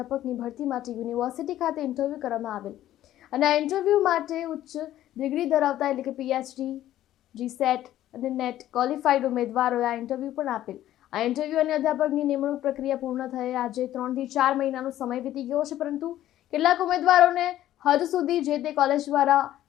ભરતી માટે યુનિવર્સિટી ખાતે ઇન્ટરવ્યૂ કરવામાં આવેલ અને આ ઇન્ટરવ્યૂ માટે ઉચ્ચ ડિગ્રી ધરાવતા એટલે કે પીએચડી, જીસેટ અને નેટ ક્વોલિફાઈડ ઉમેદવારોએ આ ઇન્ટરવ્યૂ પણ આપેલ. આ ઇન્ટરવ્યૂ અને અધ્યાપકની નિમણૂક પ્રક્રિયા પૂર્ણ થયે આજે 3 થી 4 મહિનાનો સમય વીતી ગયો છે, પરંતુ કેટલાક ઉમેદવારોને હજુ સુધી જે તે કોલેજ દ્વારા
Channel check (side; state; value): right; quieter; 13.1 dB